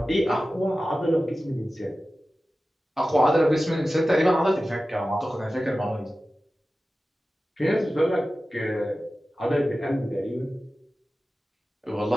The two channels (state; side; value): normal; both; correlation 0.95